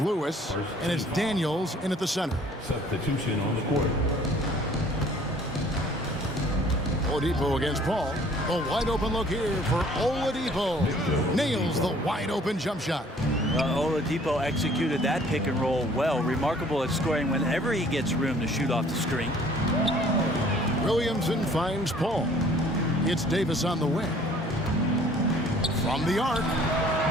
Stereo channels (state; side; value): normal; both; correlation 0.55